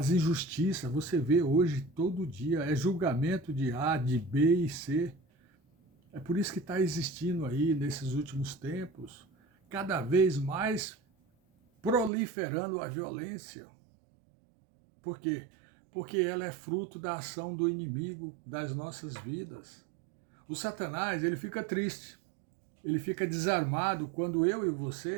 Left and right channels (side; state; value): left; drops out; at 12.1 s